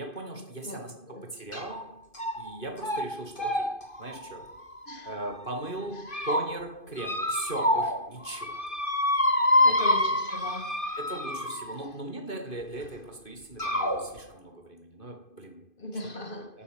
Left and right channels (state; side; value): late; right; 2.5 ms